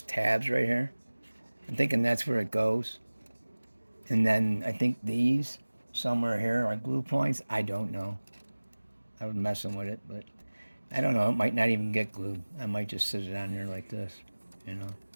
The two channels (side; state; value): both; inverted; correlation -1.00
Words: tabs right here. I'm thinking that's where it goes. And then I think these somewhere here are glue points. I don't know. I was messing with it, but I don't know. It might not even get glued. I might just sit it on there like this, you know.